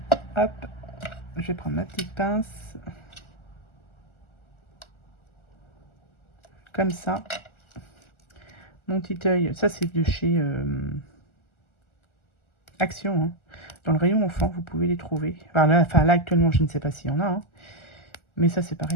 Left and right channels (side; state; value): right; late; 1.4 ms